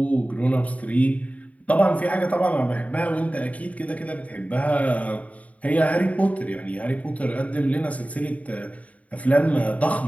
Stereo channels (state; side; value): late; right; 0.068 ms